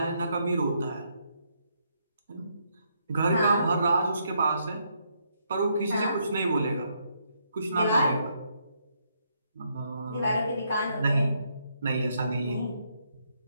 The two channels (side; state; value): both; inverted; correlation -0.75